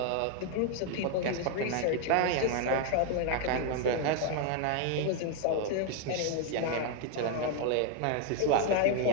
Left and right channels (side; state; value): both; different; correlation 0.01